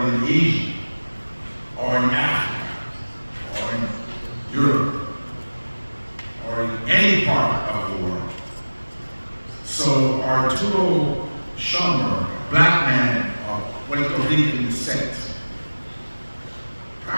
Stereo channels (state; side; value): inverted; both; correlation -1.00